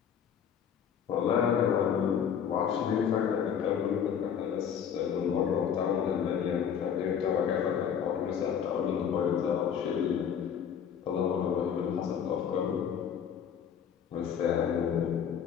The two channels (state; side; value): quieter; right; 8.1 dB